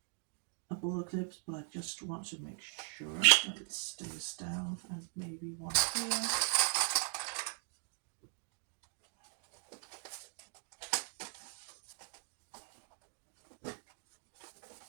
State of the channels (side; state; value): left; silent; 51 dB below the other